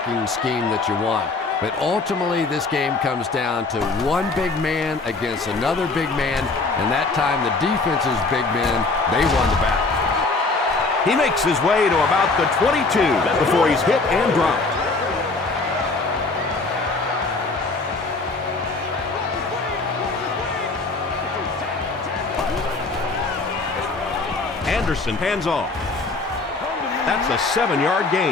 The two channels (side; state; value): right; quieter; 3.7 dB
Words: scheme that you want, but ultimately this game comes down to one big man against another big man, and that time the defense's big men, they won the battle. He makes his way to about the 22 before he's hit and dropped. Anderson hands off. That's a 7-yard